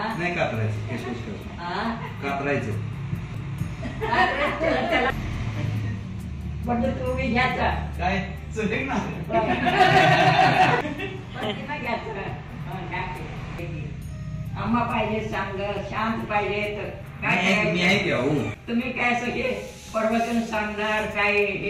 नाही कातरायचं केस कातरायचं त्याला म्हणजे तुम्ही घ्यायचा काय चुलेक ना आम्हा पाहिजे चांग शांत पाहिजे तर काय तुम्ही काय सगळे प्रवचन सांगणार काय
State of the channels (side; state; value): both; identical; correlation 1.00